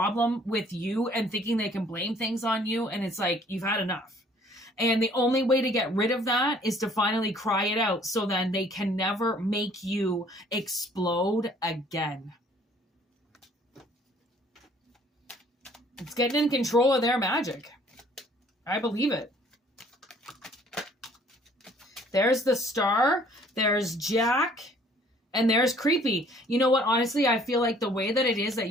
with you and thinking they can blame things on you. And it's like, you've had enough. And the only way to get rid of that is to finally cry it out, so then they can never make you explode again. It's getting in control of their magic. I believe it. There's the Star, there's Jack, and there's creepy. You know what? Honestly, I feel like the way that it is that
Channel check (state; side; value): normal; both; correlation 0.58